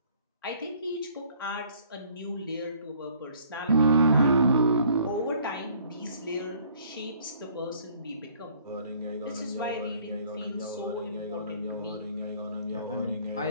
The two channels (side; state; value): both; inverted; correlation -0.59